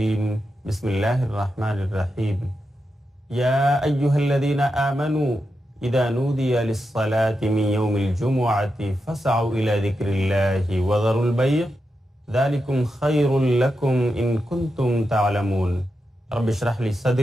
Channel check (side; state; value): both; normal; correlation 0.88